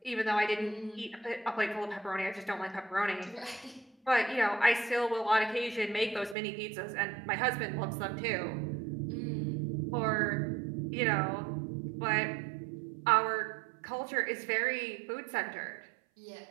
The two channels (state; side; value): drops out; left; at 6.4 s